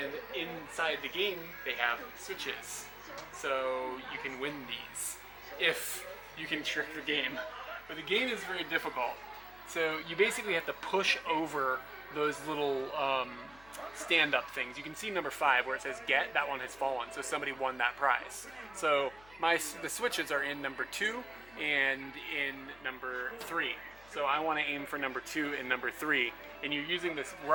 inside the game, they have switches. So you can win these if you can trick the game. But the game is very difficult. So you basically have to push over those little stand-up things. You can see number 5 where it says get, that one has fallen. So somebody won that prize. So the switches are in number 2 and in number 3. So I want to aim for number 2 and number 3. And you're using this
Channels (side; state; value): left; noise; hum, 23 dB below the sound